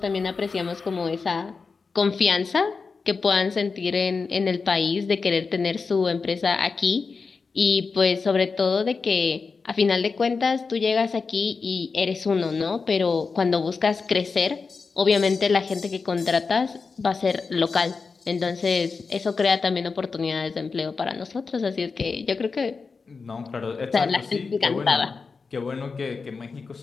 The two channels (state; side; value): quieter; right; 4.7 dB